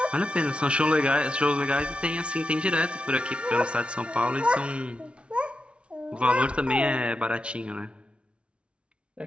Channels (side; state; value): left; late; 0.059 ms